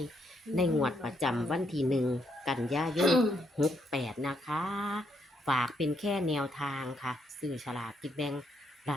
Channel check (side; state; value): both; normal; correlation 0.76